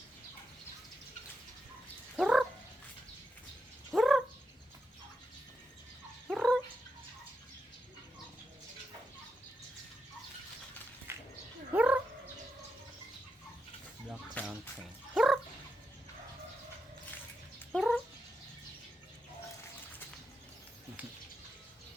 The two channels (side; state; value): both; normal; correlation 0.85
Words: Black Sound Train.